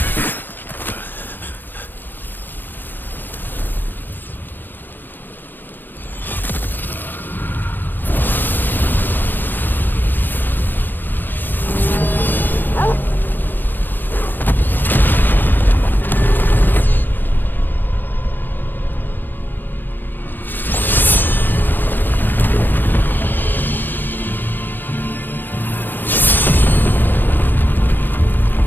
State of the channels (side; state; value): right; late; 0.091 ms